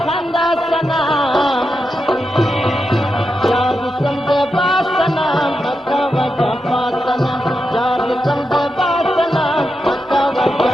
سنا یار سمد باسنا مکا وجفا سنا یار سمد باسنا مکا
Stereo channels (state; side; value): normal; both; correlation 0.87